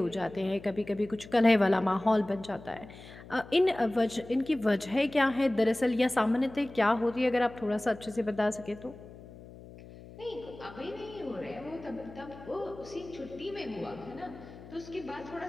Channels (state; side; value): noise; left; hum, 17 dB below the sound